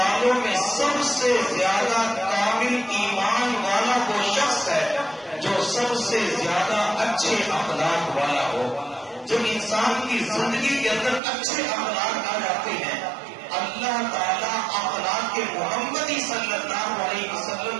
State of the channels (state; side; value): drops out; left; at 11.2 s